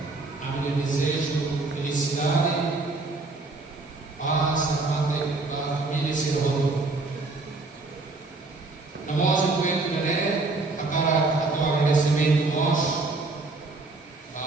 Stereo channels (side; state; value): left; quieter; 3.4 dB